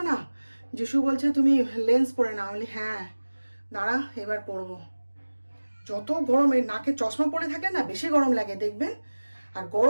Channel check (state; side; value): inverted; both; correlation -1.00